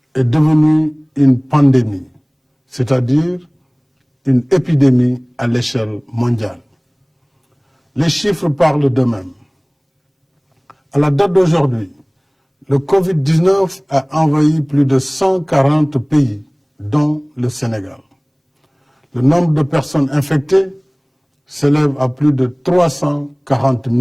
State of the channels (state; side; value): identical; both; correlation 1.00